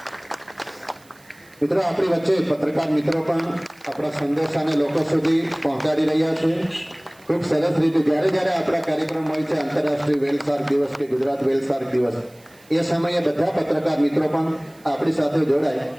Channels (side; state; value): right; noise; hiss, 28 dB below the sound